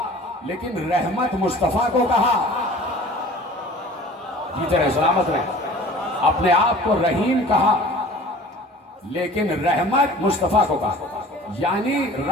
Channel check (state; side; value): normal; both; correlation 0.45